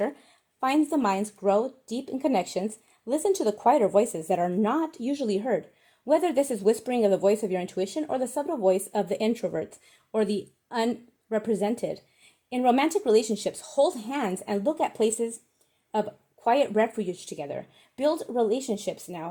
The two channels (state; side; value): identical; both; correlation 1.00